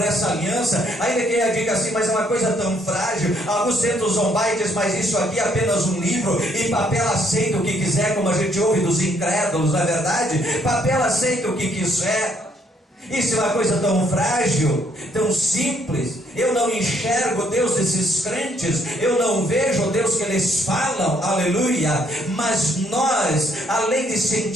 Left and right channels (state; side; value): normal; both; correlation 0.69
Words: essa aliança. Ainda que ela diga assim: mas é uma coisa tão frágil. Alguns tentam zombar e dizem: mas isso aqui é apenas um livro, e papel aceita o que quiser, como a gente ouve dos incrédulos, não é verdade? Papel aceita o que quiser. Isso é uma coisa tão frágil, tão simples. Eu não enxergo Deus desses crentes, eu não vejo o Deus que eles falam, aleluia. Mas nós, além de